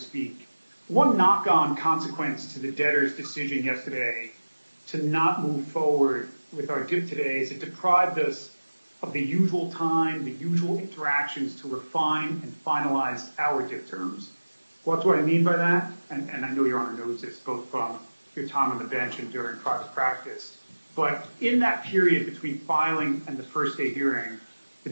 One knock-on consequence to the debtor's decision yesterday to not move forward with our DIP today is it deprived us of the usual time, the usual interactions to refine and finalize our DIP terms. What's what I mean by that? And I know Your Honor knows this, both from your time on the bench and during private practice. But in that period between filing and the first day hearing, the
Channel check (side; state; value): both; inverted; correlation -1.00